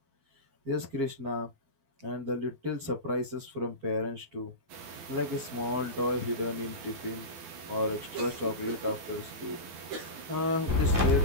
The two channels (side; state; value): left; late; 12 ms